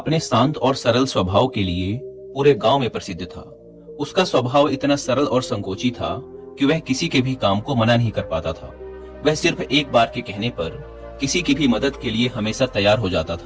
शांत और सरल स्वभाव के लिए पूरे गांव में प्रसिद्ध था। उसका स्वभाव इतना सरल और संकोची था कि वह किसी के भी काम को मना नहीं कर पाता था। वह सिर्फ एक बार के कहने पर किसी की भी मदद के लिए हमेशा तैयार हो जाता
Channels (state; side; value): identical; both; correlation 1.00